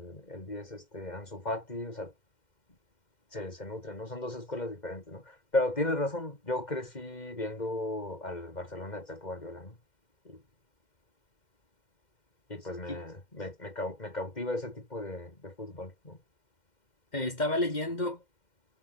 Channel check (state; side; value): late; right; 2.1 ms